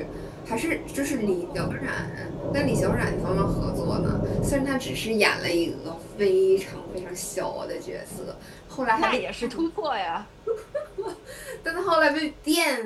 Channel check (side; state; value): both; identical; correlation 1.00